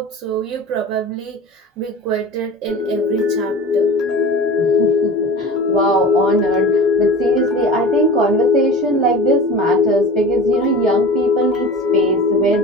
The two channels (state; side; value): normal; both; correlation 0.35